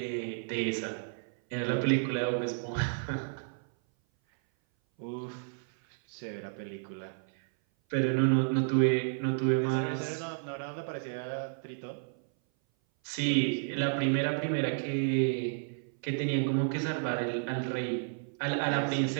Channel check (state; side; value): silent; left; 57 dB below the other